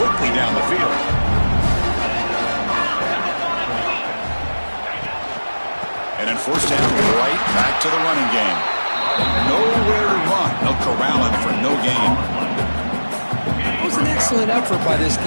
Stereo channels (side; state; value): both; inverted; correlation -1.00